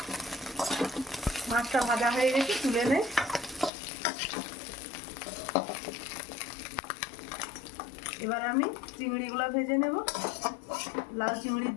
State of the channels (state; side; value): drops out; right; at 3.7 s